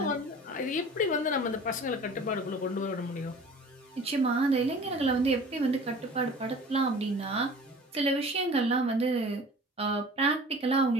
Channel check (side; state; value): both; normal; correlation 0.43